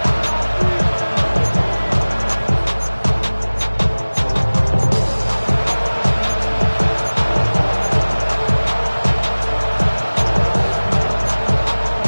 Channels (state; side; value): inverted; both; correlation -1.00